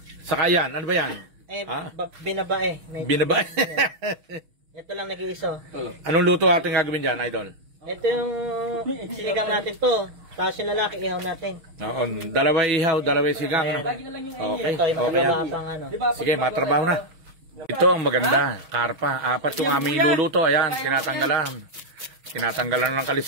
Saka yan, ano ba yan? Binabae. Binabae? Ito lang nag-iiso. Anong luto ating gagawin dyan, idol? Ito yung sinigang natin to. Tapos yung lalaki, ihaw natin. Oo, dalawang ihaw, dalawang sigang. Ano? Okay, Ito yung okay. malabasang ano. Sige, matrabaho na. Ito ang maganda, karpa. Apat yung aming iluluto. Ayan, tinatanggalan. Tinatanggalan ng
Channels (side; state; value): left; late; 6.4 ms